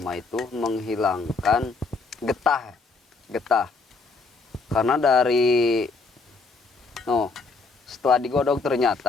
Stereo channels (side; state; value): right; quieter; 4.0 dB